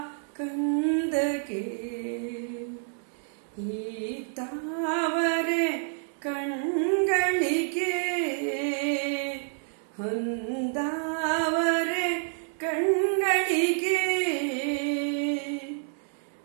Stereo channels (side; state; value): left; silent; 59 dB below the other